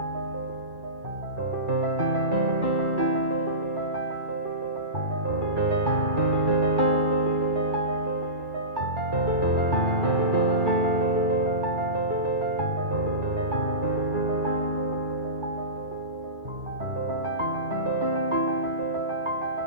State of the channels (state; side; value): late; left; 2.3 ms